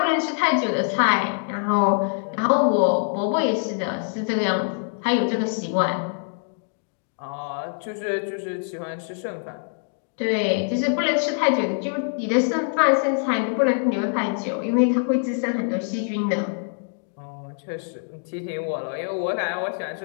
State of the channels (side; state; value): right; silent; digital silence